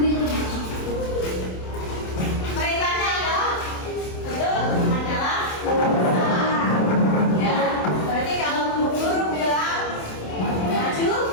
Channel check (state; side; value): late; right; 27 ms